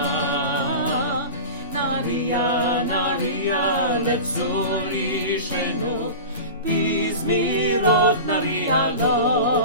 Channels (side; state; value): both; inverted; correlation -0.31